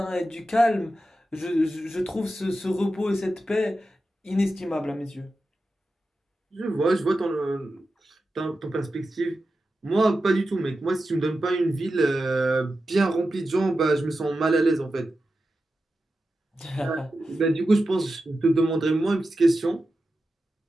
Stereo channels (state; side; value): normal; both; correlation 0.91